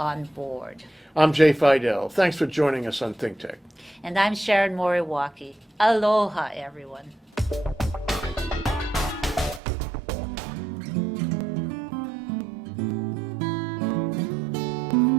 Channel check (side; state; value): left; drops out; at 9.6 s